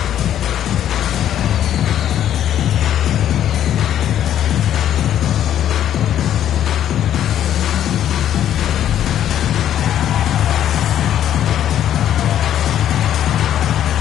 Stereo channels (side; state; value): right; quieter; 10.8 dB